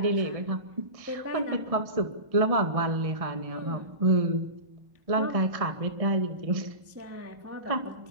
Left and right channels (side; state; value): left; late; 1.6 ms